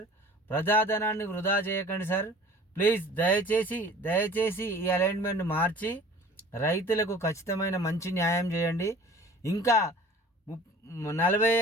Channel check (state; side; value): normal; both; correlation 0.46